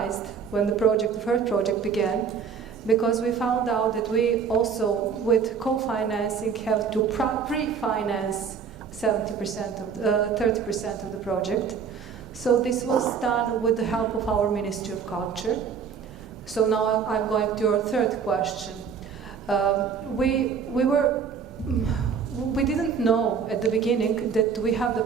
when the first project began, because we found out that we also, with co-financing, have to pre-finance 30% of the project. So this was done with the help of our Ministry of Culture. So now I'm going to your third question. We didn't know at the beginning that we have the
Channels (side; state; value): left; quieter; 6.5 dB